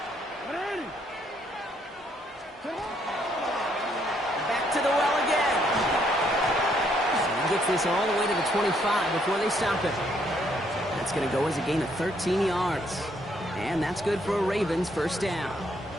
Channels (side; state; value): both; normal; correlation 0.70